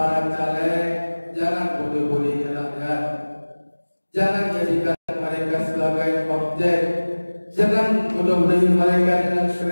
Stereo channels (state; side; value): inverted; both; correlation -1.00